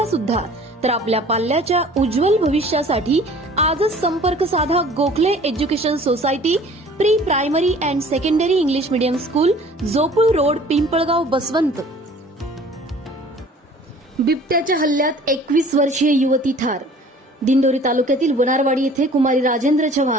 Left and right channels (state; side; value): normal; both; correlation 0.49